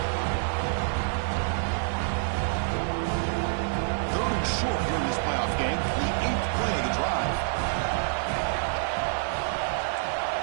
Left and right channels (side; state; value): left; silent; digital silence